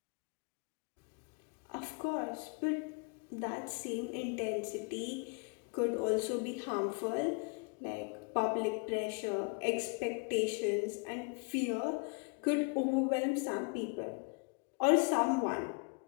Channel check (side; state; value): right; quieter; 34.1 dB